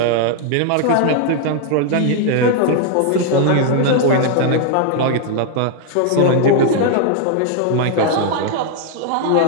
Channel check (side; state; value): both; different; correlation 0.00